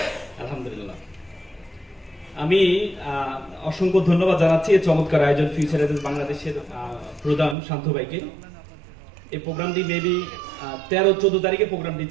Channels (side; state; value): left; drops out; at 7.6 s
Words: আলহামদুলিল্লাহ। আমি অসংখ্য ধন্যবাদ জানাচ্ছি এই চমৎকার আয়োজন ফিউচার এজেন্স বাংলাদেশের প্রধান শান্ত ভাইকে। এই প্রোগ্রামটি মেবি 13-14 তারিখে প্রোগ্রামটি